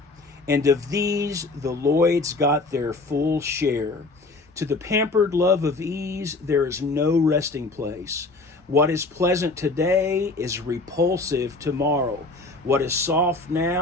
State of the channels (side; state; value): right; quieter; 3.4 dB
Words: And of these the Lloyds got their full share. To the pampered love of ease there is no resting place. What is pleasant today is repulsive tomorrow. What is soft